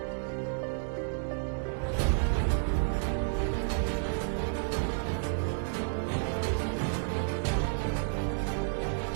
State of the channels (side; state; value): left; silent; 57 dB below the other